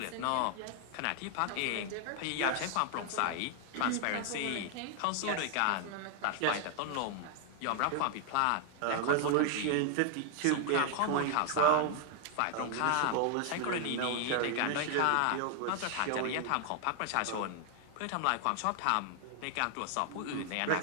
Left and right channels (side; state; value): both; different; correlation 0.00